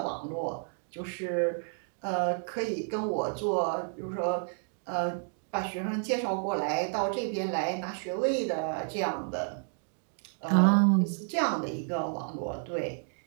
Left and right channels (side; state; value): left; silent; 57 dB below the other